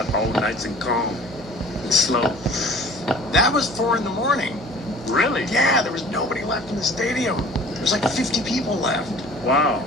all nice and calm and slow. That was 4 in the morning. Really? Yeah, there was nobody left in the stadium. There was like 50 people left. Wow.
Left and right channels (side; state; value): both; normal; correlation 0.47